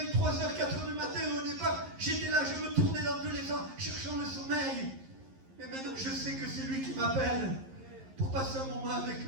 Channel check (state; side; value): late; left; 11 ms